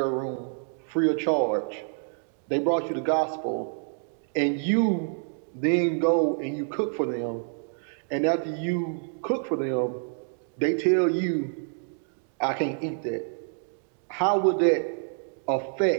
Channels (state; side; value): silent; left; digital silence